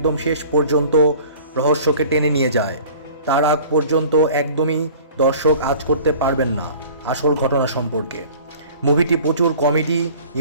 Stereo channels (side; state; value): both; inverted; correlation -0.44